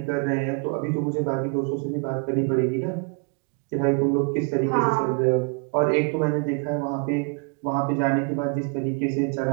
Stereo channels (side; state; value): left; quieter; 35.4 dB